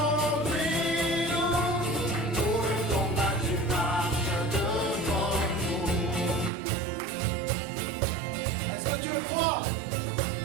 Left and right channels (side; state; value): left; drops out; at 6.5 s